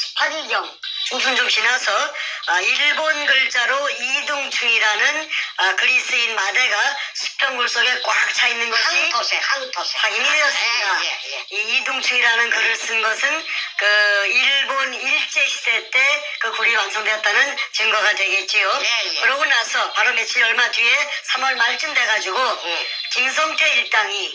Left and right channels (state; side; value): identical; both; correlation 1.00